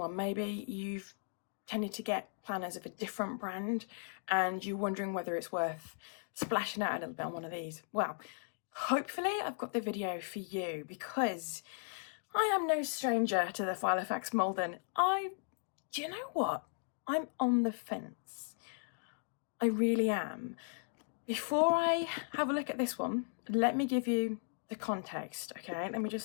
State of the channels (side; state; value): right; silent; digital silence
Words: Maybe you've tended to get planners of a different brand and you're wondering whether it's worth splashing out a little bit on one of these. Well, hopefully I've got the video for you, because I am no stranger to the Filofax Malden. Do you know what? I'm on the fence. I really am. Before I have a look at this one, let me give you the context, okay? Let me